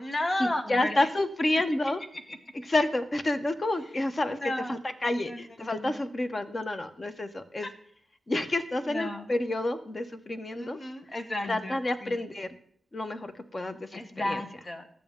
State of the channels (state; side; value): normal; both; correlation 0.94